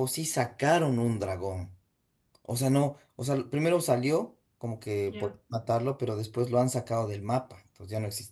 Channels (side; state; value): both; identical; correlation 1.00